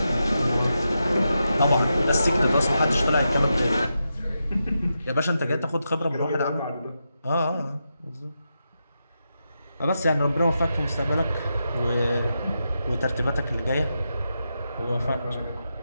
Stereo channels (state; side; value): inverted; both; correlation -0.87